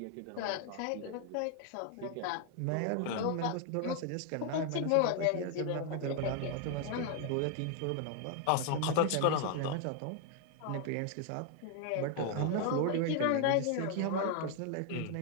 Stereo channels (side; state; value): both; different; correlation 0.00